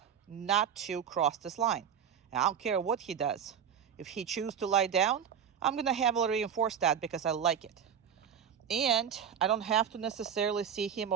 not to cross this line. And I don't care what he does. If he chooses to lie down, I'm gonna heavily reinforce that because I like it. And I don't have to necessarily see him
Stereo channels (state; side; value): quieter; left; 8.1 dB